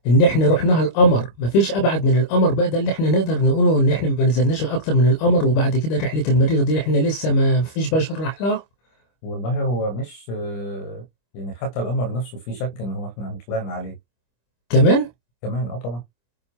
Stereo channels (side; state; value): right; late; 25 ms